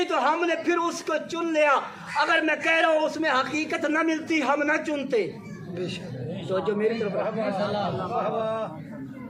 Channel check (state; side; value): identical; both; correlation 1.00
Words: تو ہم نے پھر اس کو چن لیا۔ اگر میں کہہ رہا ہوں اس میں حقیقت نہ ملتی ہم نہ چنتے۔ تو جو میری طرف